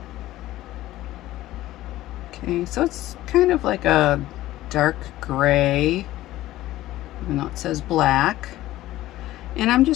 Okay, so it's kind of like a dark gray, even though it says black. And I'm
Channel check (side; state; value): right; quieter; 15.5 dB